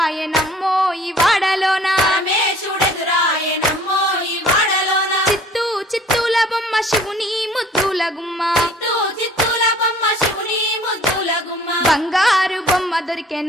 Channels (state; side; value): normal; both; correlation 0.52